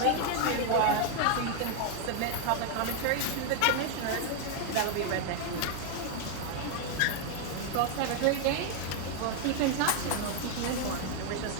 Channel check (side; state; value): both; different; correlation 0.00